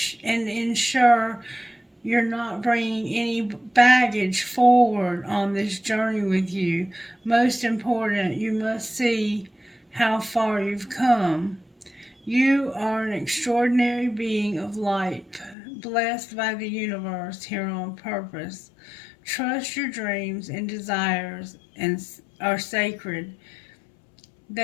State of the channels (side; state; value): right; drops out; at 15.6 s